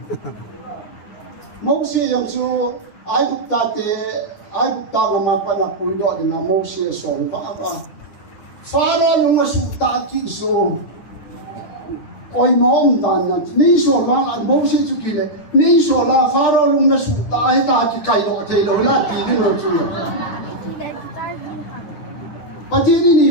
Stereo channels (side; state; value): right; late; 9.6 ms